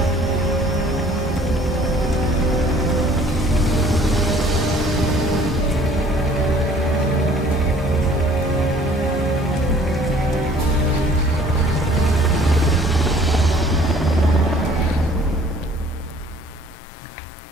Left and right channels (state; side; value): normal; both; correlation 0.55